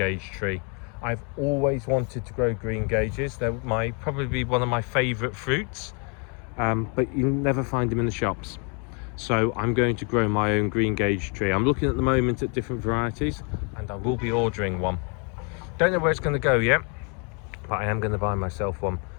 tree. I've always wanted to grow green gages. They're probably one of my favourite fruits, but you never find them in the shops. So I'm going to grow my own green gage tree. I'm looking at the moment at different varieties, and I will be ordering one. Don't know where it's going to go yet, but I am going to buy myself one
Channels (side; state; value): right; quieter; 36.4 dB